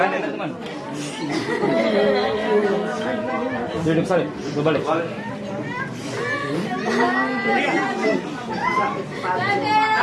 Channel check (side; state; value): both; identical; correlation 1.00